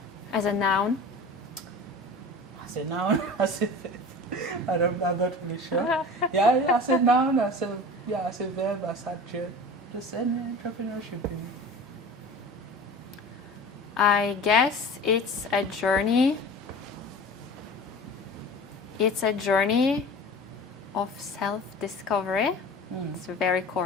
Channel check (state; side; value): normal; both; correlation 0.37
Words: As a noun? As a noun? I'm not really sure. Yeah, as a noun, as a verb, as adjective. Just any entrepreneurship in you. I guess it's a journey. It's a journey of self-discovery. It's very